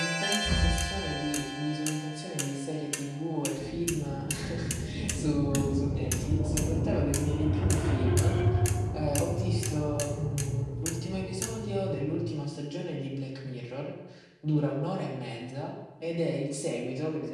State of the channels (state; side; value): identical; both; correlation 1.00